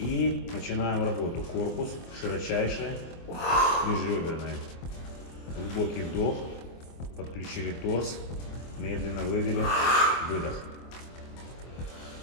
начинаем работу. Корпус широчайший, межреберный. Глубокий вдох, подключили торс, медленно вывели, выдох.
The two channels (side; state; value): right; late; 24 ms